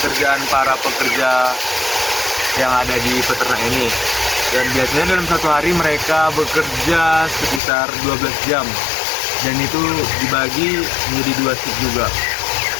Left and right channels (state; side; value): drops out; right; at 7.6 s